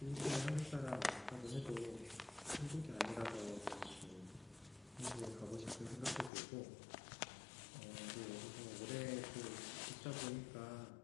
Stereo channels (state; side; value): drops out; right; at 6.3 s